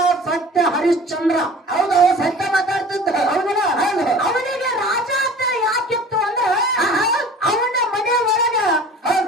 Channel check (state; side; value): normal; both; correlation 0.43